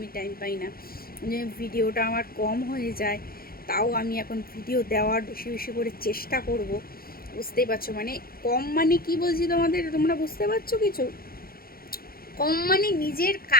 টাইম পাই না, যে ভিডিওটা আমার কম হয়ে যায়। তাও আমি এখন ভিডিও দেওয়ার বেশি বেশি করে চেষ্টা করব, বুঝতেই পারছো? মানে কম মানে কি বলছি তোমাদের, তোমরা বুঝতে পারছো কিছু? কম মানে নিজের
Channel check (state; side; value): late; right; 0.43 ms